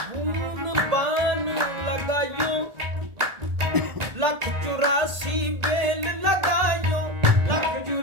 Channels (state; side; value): late; left; 1.4 ms